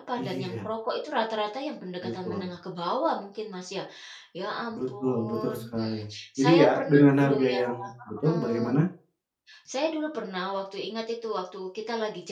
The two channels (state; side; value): identical; both; correlation 1.00